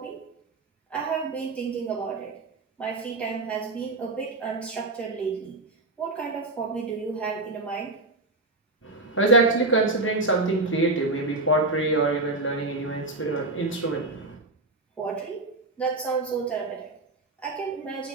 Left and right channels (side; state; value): left; quieter; 3.1 dB